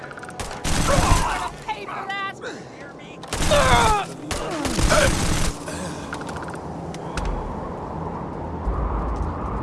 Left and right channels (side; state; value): both; identical; correlation 1.00